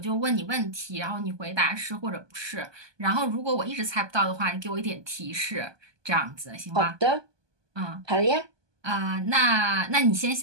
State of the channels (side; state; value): left; late; 1.2 ms